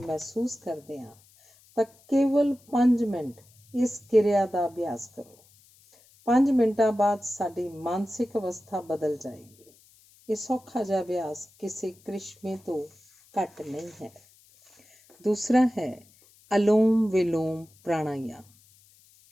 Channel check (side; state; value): left; noise; hiss, 29 dB below the sound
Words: ਕਰਦੇ ਹਾਂ ਤਾਂ ਕੇਵਲ 5 ਮਿੰਟ ਇਸ ਕਿਰਿਆ ਦਾ ਅਭਿਆਸ ਕਰੋ। 5 ਮਿੰਟਾਂ ਬਾਅਦ ਸਾਡੀ ਮਾਨਸਿਕ ਅਵਸਥਾ ਬਦਲ ਜਾਏਗੀ। ਇਹ ਸੌਖਾ ਜਿਹਾ ਅਭਿਆਸ ਕਿਸੇ ਕ੍ਰਿਸ਼ਮੇ ਤੋਂ ਘੱਟ ਨਹੀਂ ਹੈ। ਦੂਸਰਾ ਹੈ ਅਲੋਮ ਵਿਲੋਮ ਪ੍ਰਾਣਾਯਾਮ।